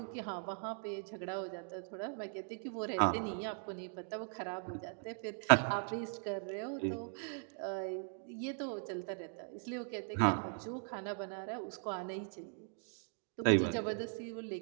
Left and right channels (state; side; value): silent; left; 51 dB below the other